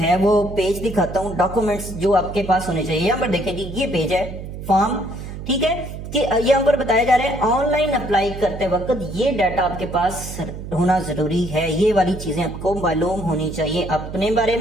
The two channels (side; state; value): right; noise; hum, 9 dB below the sound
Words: वो पेज दिखाता हूँ, डॉक्यूमेंट्स जो आपके पास होने चाहिए। यहाँ पर देखें जी ये पेज है फॉर्म, ठीक है, कि यहाँ पर बताया जा रहा है ऑनलाइन अप्लाई करते वक्त ये डाटा आपके पास होना जरूरी है। ये वाली चीजें आपको मालूम होनी चाहिए अपने बारे